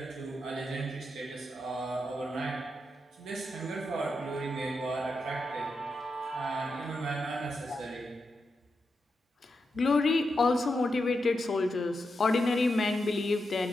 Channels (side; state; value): both; normal; correlation 0.86